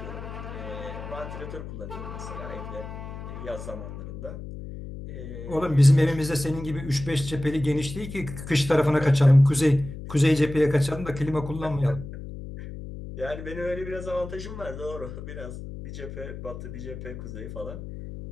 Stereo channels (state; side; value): noise; left; hum, 10 dB below the sound